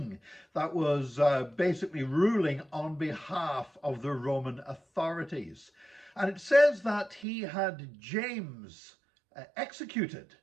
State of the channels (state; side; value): drops out; left; at 7.2 s